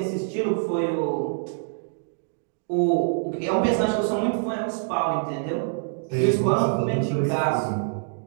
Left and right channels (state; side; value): silent; left; digital silence